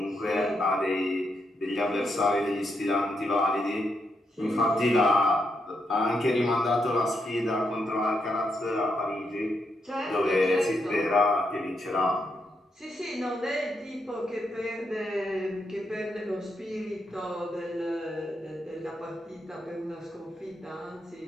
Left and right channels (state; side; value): normal; both; correlation 0.81